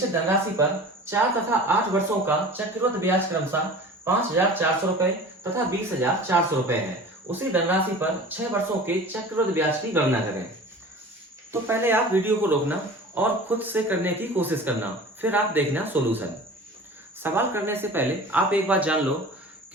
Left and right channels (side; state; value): both; normal; correlation 0.39